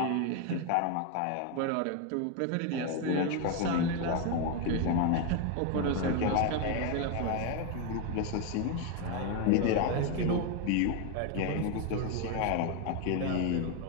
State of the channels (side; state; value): both; different; correlation 0.01